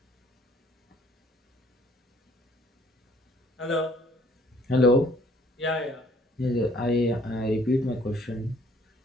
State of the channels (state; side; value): normal; both; correlation 0.60